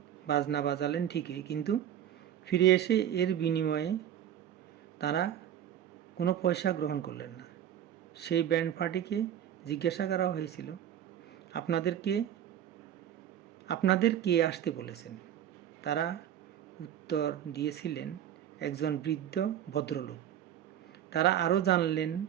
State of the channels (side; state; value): left; quieter; 10.4 dB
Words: বাজনা বাজালেন ঠিকই, কিন্তু ফিরে এসে এর বিনিময়ে তারা কোনো পয়সা গ্রহণ করলেন না। সেই ব্যান্ড পার্টিকে জিজ্ঞাসা করা হয়েছিল, আপনাদের কে আসতে বলেছেন? তারা উত্তর দিয়েছিলেন, একজন বৃদ্ধ ভদ্রলোক। তারা